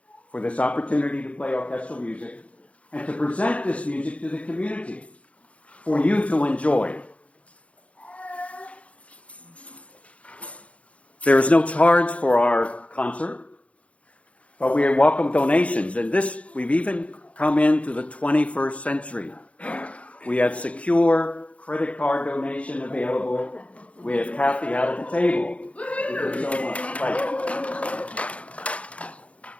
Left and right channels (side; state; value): right; late; 0.064 ms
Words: for this opportunity to play orchestral music and to present this music to the community for you to enjoy. There is no charge for our concert, but we welcome donations. And this, we've even come into the 21st century. We have secure credit card donation available. We have Kathy out at the table. Thank you so much.